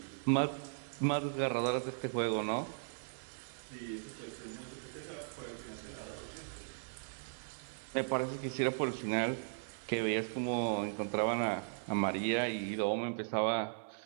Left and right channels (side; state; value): left; silent; 53 dB below the other